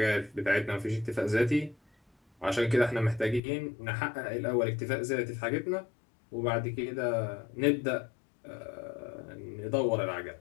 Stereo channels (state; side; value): drops out; right; at 3.4 s